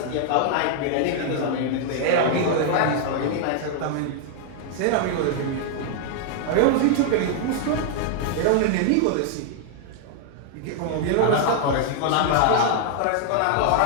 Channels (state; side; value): different; both; correlation 0.00